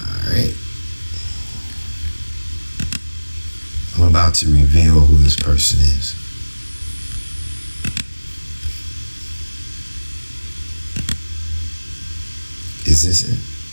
right. I'm about to reveal who this person is. Is this it?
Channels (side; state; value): both; inverted; correlation -1.00